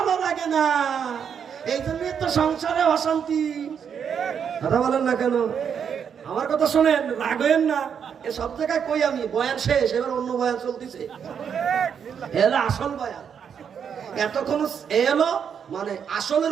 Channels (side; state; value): left; quieter; 7.5 dB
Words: লাগে না? এই জন্যই তো সংসারে অশান্তি। কথা বলেন না কেন? আমার কথা শোনেন, রাগেন না। এ সব জায়গায় কই আমি, বয়ান শেষ, এবার অন্য বয়ান চলতেছে। এলো আসল বয়ান। এতক্ষণ এলো মানে